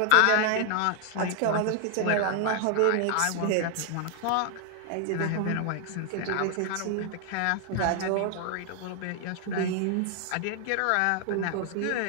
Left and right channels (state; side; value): different; both; correlation 0.00